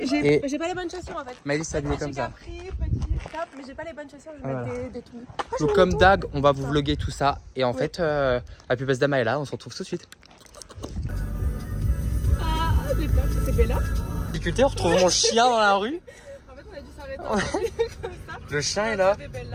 les bonnes chaussures en fait. Maëlys s'habillait comme ça. J'ai petit top, mais j'ai pas les bonnes chaussures, je vais Voilà. mettre des tout. Donc comme Dag, on va vous vlogger tout ça. Et en fait, la pubesse de Maëla, on se retrouve tout de suite. Ah, j'ai peur, c'est Bella. Difficulté, on retrouve mon chien dans la rue. En fait, on a dû s'arrêter comme ça. Le chien est là. C'est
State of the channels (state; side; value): identical; both; correlation 1.00